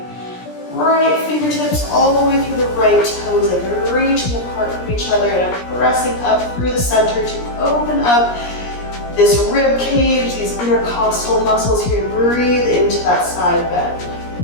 right fingertips all the way through the right toes, like they're reaching apart from each other, and I'm pressing up through the center to open up this rib cage, these intercostal muscles here. Breathe into that side bend.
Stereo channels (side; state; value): right; late; 17 ms